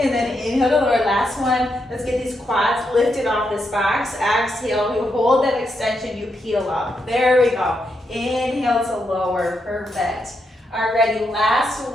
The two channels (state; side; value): normal; both; correlation 0.82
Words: then inhale to lower, last one. Let's get these quads lifted off this box. Exhale, you hold that extension, you peel up. There we go. Inhale to lower, perfect. Alrighty, last